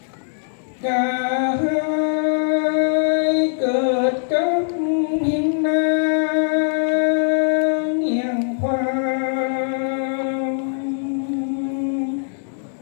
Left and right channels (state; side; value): silent; right; digital silence